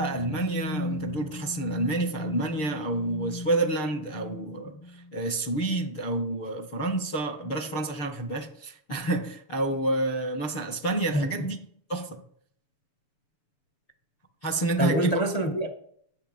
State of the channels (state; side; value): late; right; 6.6 ms